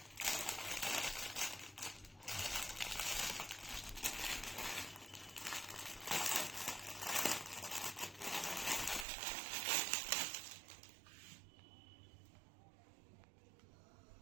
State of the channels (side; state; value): left; drops out; at 9.1 s